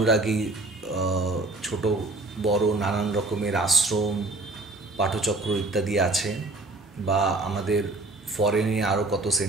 ছোট বড় নানান রকমের আশ্রম, পাঠচক্র ইত্যাদি আছে, বা আমাদের ফরেনে আরও কত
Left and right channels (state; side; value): quieter; left; 3.0 dB